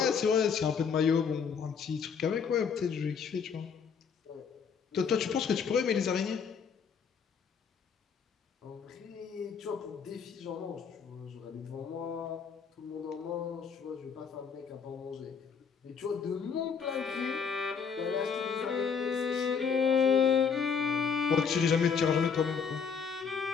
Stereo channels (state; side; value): quieter; right; 6.3 dB